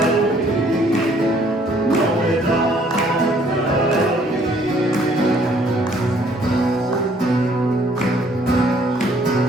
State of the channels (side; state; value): both; normal; correlation 0.62